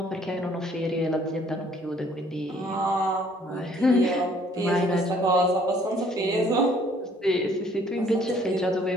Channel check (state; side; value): normal; both; correlation 0.60